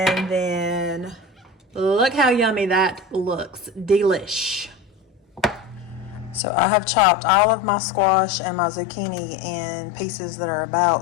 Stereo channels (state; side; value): drops out; right; at 6.4 s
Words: then look how yummy that looks. Delish. So I have chopped all of my squash and my zucchini in pieces that are